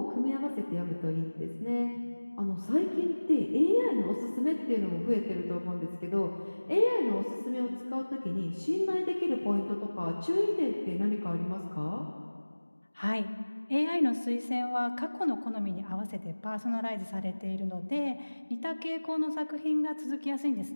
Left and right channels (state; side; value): inverted; both; correlation -1.00